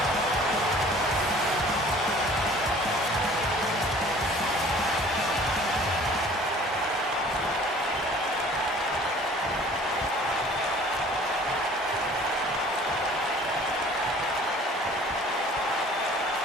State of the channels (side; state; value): both; normal; correlation 0.50